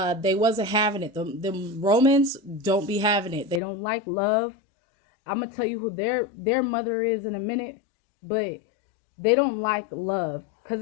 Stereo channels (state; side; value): drops out; right; at 3.6 s